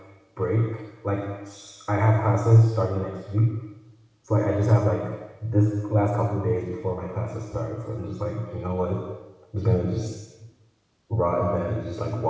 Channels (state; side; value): identical; both; correlation 1.00